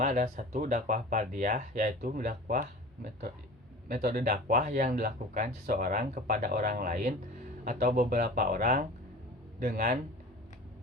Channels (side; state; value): both; normal; correlation 0.38